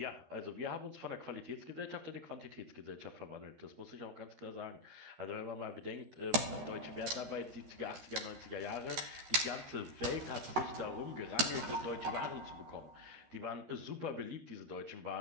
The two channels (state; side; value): late; left; 13 ms